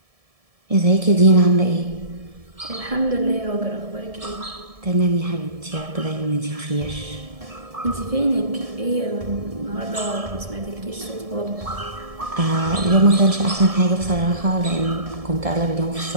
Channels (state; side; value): late; left; 1.7 ms